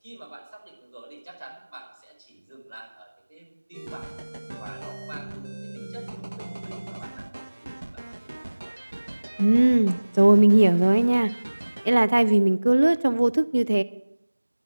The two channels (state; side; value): inverted; both; correlation -1.00